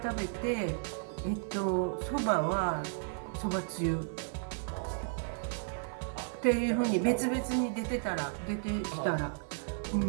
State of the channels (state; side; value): silent; left; 55 dB below the other